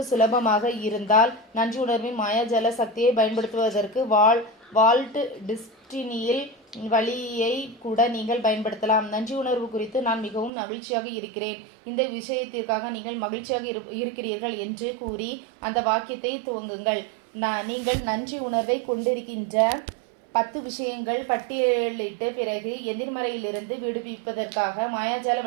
சுலபமாக இருந்தால் நன்றி உணர்வின் மாயாஜால சக்தியை பயன்படுத்துவதற்கு வால்ட் டிஸ்டினியில் வழியை கூட நீங்கள் பயன்படுத்தலாம். நன்றி உணர்வு குறித்து நான் மிகவும் மகிழ்ச்சியாக இருக்கிறேன். இந்த விஷயத்திற்காக நீங்கள் மகிழ்ச்சியாக இருக்கிறீர்கள் என்று கூறி அந்த வாக்கியத்தை துவங்குங்கள். நீங்கள் நன்றி உணர்வை கொண்டிருக்கின்ற 10 விஷயங்கள் பட்டியலிட்டு பிறகு எதிர்மறையிலிருந்து விடுவிப்பதற்காக மாயாஜால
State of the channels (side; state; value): left; drops out; at 10.5 s